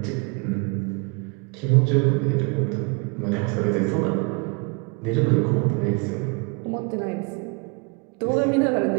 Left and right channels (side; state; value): left; quieter; 31.2 dB